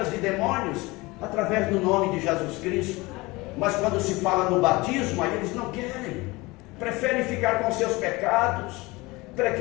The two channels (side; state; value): right; quieter; 22.7 dB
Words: de demônios através do nome de Jesus Cristo. Mas quando se fala no batismo, aí eles não querem. Preferem ficar com seus pecados.